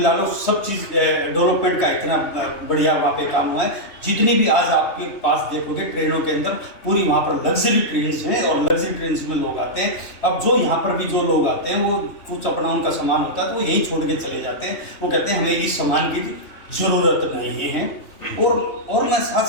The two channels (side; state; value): right; late; 3.1 ms